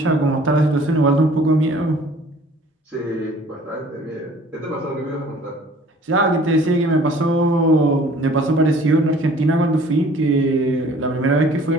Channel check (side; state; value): both; normal; correlation 0.52